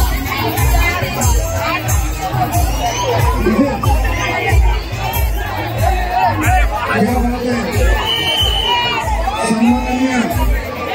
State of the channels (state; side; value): identical; both; correlation 1.00